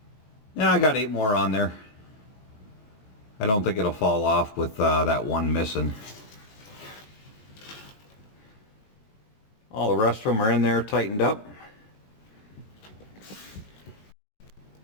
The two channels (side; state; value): right; late; 19 ms